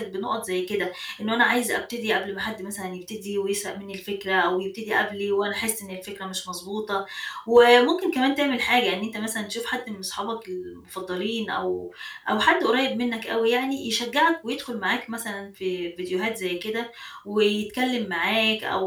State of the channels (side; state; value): both; identical; correlation 1.00